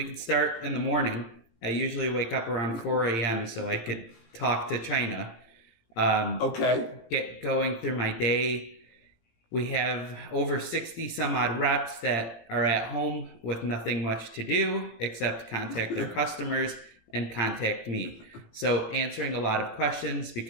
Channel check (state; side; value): late; right; 17 ms